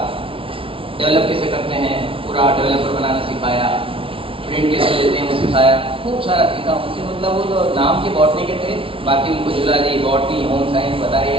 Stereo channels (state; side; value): late; left; 0.26 ms